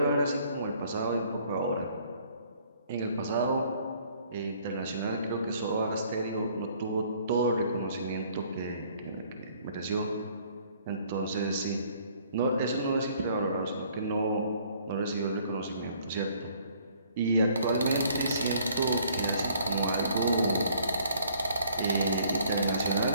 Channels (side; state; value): both; inverted; correlation -0.60